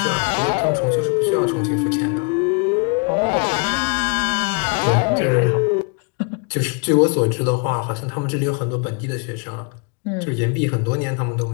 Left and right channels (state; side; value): quieter; right; 32.0 dB